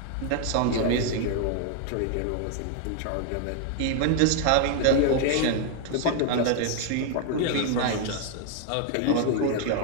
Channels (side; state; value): both; different; correlation 0.01